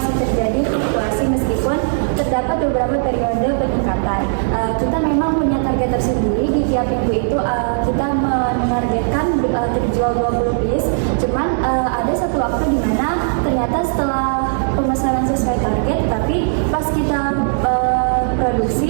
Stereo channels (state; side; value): silent; left; digital silence